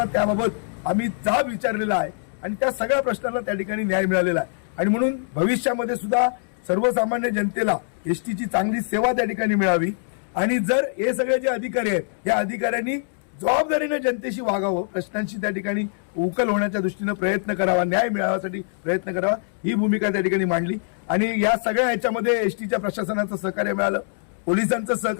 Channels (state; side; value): silent; right; digital silence